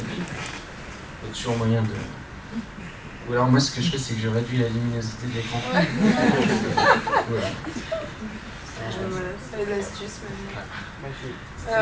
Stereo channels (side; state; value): both; identical; correlation 1.00